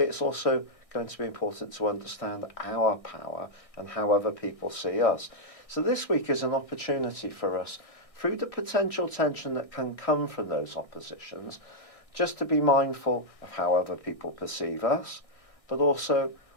it's also going to be important to understand our power and how other people see us. So this week is an opportunity for us, through the potential tension that can come from those oppositions, just to be mindful of how other people perceive us, but also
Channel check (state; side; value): late; right; 1.6 ms